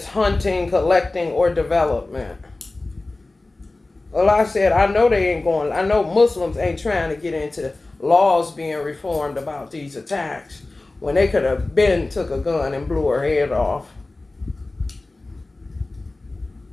hunting, collecting, or development. Well, I said, I know they ain't going, I know Muslims ain't trying to get into laws being reformed about these attacks when they could have been took a gun and blew her head off.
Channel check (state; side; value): quieter; right; 3.1 dB